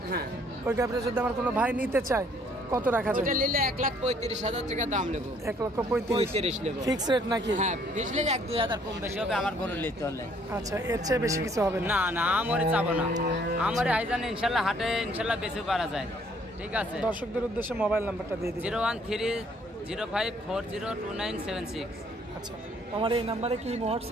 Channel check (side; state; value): both; normal; correlation 0.63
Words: হ্যাঁ, ওই গাভিটা যদি আমার কোনো ভাই নিতে চায় কত রাখা যায়? ওটা নিলে 1,35,000 টাকা দাম নেব। 1,35,000 নেব। ফিক্স রেট নাকি? হ্যাঁ, বুঝলে 1-2 হাজার কম বেশি হবে আমার গরু নিতে হলে। আচ্ছা, এর চেয়ে বেশি কিছু হবে না? না না, আমারে চাবো না, আমারে আইজান ইনশাল্লাহ হাটে ইনশাল্লাহ বেশি পারা যায়, ঠিক আছে? দর্শকদের উদ্দেশ্যে মোবাইল নাম্বারটা দিয়ে দিন। 01305402976। আচ্ছা, আমার এই নাম্বারে কি